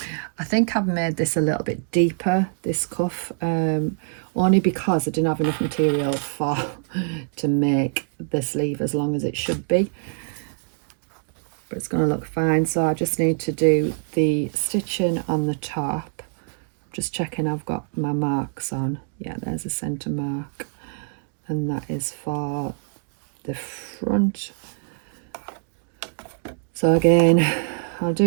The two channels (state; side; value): silent; left; digital silence